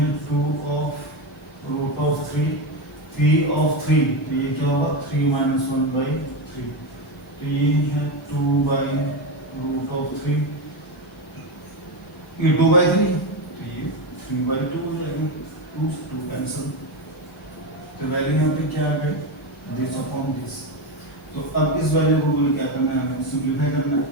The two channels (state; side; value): normal; both; correlation 0.14